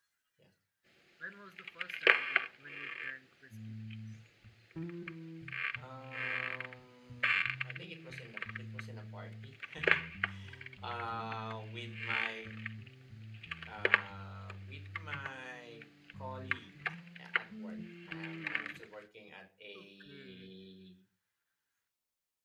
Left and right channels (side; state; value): both; identical; correlation 1.00